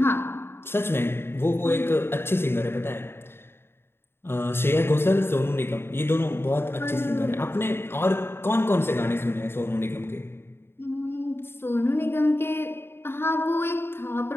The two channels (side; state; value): right; late; 0.11 ms